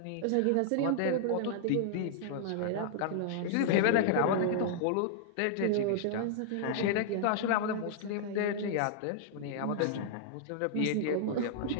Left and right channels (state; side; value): different; both; correlation -0.01